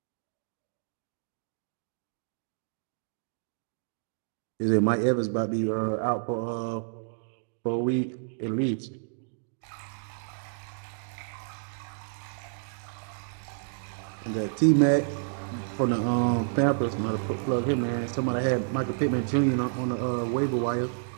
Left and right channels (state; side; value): silent; left; digital silence